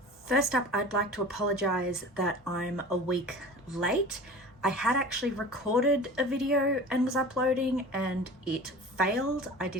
First up, I'd like to apologize that I'm a week late. I had actually recorded a video and was uploading and it failed. I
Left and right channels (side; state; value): both; normal; correlation 0.38